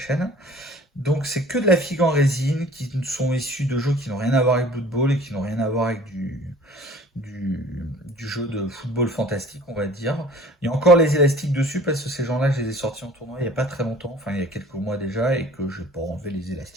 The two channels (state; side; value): normal; both; correlation 0.49